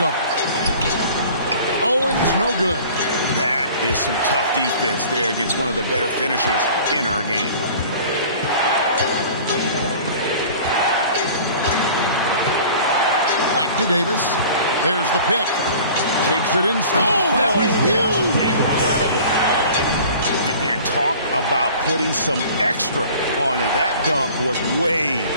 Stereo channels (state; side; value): inverted; both; correlation -0.45